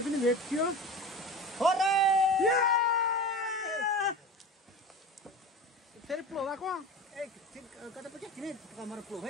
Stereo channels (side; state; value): both; normal; correlation 0.32